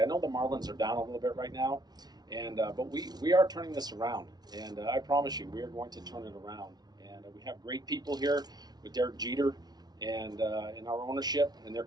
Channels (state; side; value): late; left; 0.19 ms